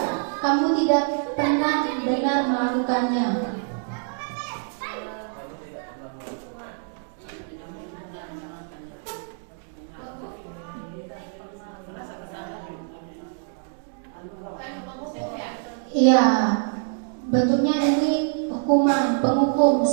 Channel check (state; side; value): silent; left; 61 dB below the other